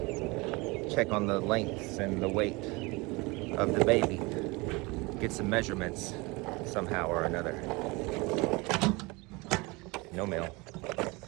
check on the lengths and the weight of the baby. Get some measurements somehow or another. No mail.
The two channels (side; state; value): left; quieter; 25.3 dB